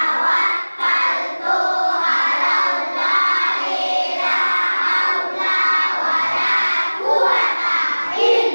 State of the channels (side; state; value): both; inverted; correlation -1.00